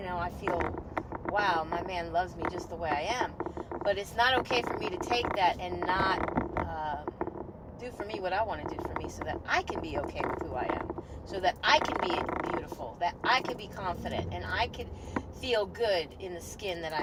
know, I feel, wow, my man loves me just the way I am. But it's not okay for me to take that and not do for me what I want to do for me, so that I can be okay with who I am, so that I can be beautiful, that I can be confident, and I can feel good in the skin that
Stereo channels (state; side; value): identical; both; correlation 1.00